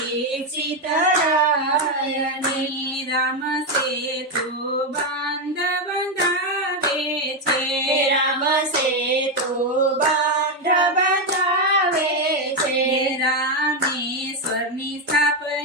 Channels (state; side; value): normal; both; correlation 0.07